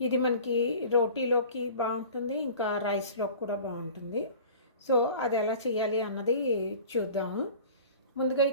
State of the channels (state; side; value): inverted; both; correlation -0.42